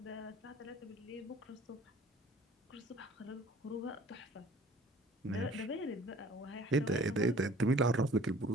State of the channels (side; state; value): both; normal; correlation 0.51